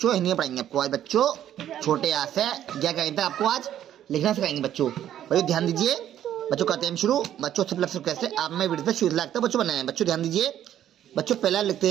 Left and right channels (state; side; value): quieter; left; 11.1 dB